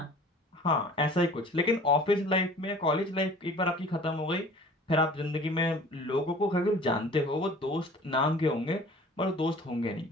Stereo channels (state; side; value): normal; both; correlation 0.47